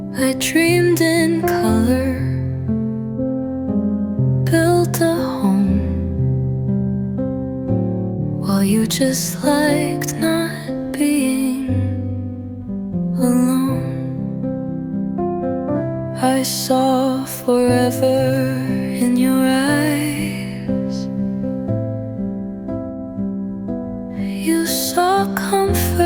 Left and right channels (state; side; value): identical; both; correlation 1.00